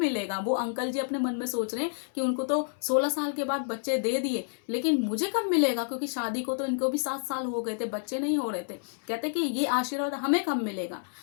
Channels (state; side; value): silent; right; 58 dB below the other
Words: वो अंकल जी अपने मन में सोच रहे हैं कि उनको तो 16 साल के बाद बच्चे दे दिए, लेकिन मुझे कब मिलेगा, क्योंकि शादी को तो इनको भी 7 साल हो गए थे, बच्चे नहीं हो रहे थे। कहते कि ये आशीर्वाद हमें कब मिलेगा।